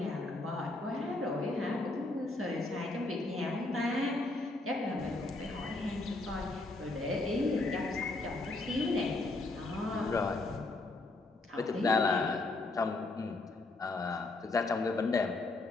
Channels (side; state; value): right; quieter; 3.0 dB